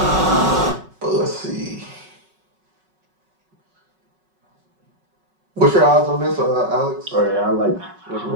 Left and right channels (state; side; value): late; left; 5.3 ms